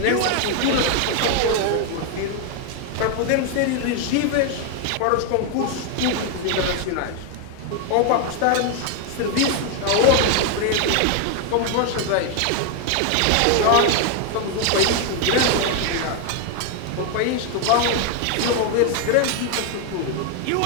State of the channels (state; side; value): different; both; correlation 0.01